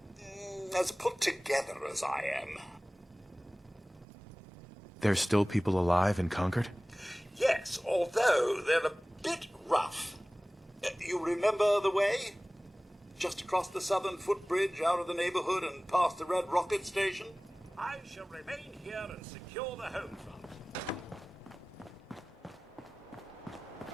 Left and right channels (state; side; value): normal; both; correlation 0.98